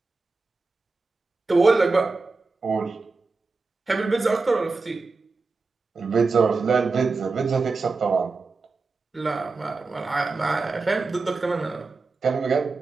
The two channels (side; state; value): left; quieter; 4.0 dB